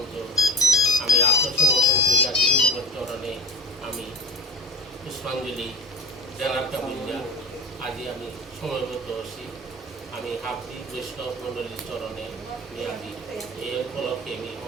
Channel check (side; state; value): both; normal; correlation 0.31